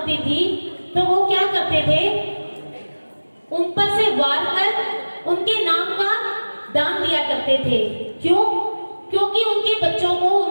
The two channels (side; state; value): both; inverted; correlation -1.00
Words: थी तो वो क्या करते थे, उन पर से वार कर उनके नाम का दान दिया करते थे। क्यों? क्योंकि उनके बच्चों को